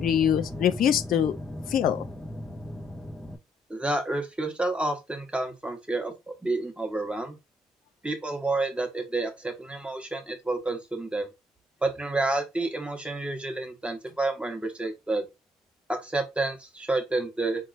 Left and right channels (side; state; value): both; normal; correlation 0.72